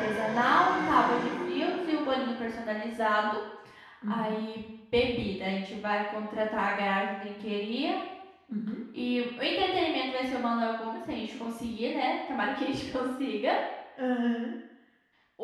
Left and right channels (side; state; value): both; identical; correlation 1.00